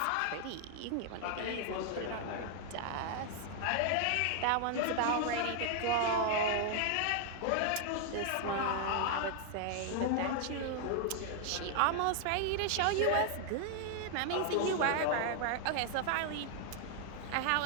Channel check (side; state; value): both; different; correlation 0.00